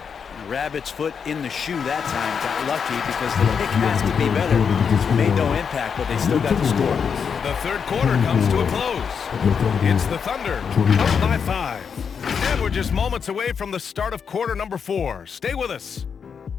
Rabbit's foot in the shoe that time. Got lucky because the pick has to be better. Made no impact, but they still got the score. The 3rd quarter comes to a close. It's the Thunder up by 5. And we're just moments away from the start of quarter number 4. Stay with us.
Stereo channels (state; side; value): quieter; right; 6.6 dB